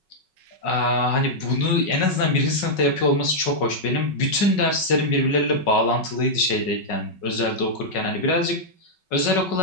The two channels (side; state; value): right; late; 5.4 ms